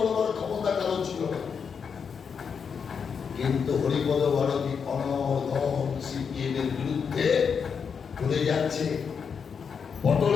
ক্ষমতা কারো ছিল না। কিন্তু হরিপদ ভারতী অনর্গল সিপিএম এর বিরুদ্ধে বলে যাচ্ছে।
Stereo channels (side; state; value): right; quieter; 6.4 dB